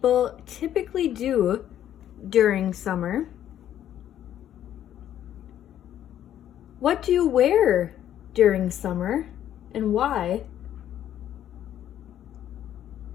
typically do during summer? What do you wear during summer and why?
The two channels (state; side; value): quieter; right; 11.1 dB